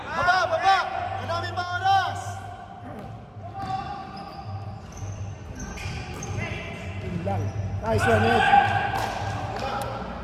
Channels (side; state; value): both; identical; correlation 1.00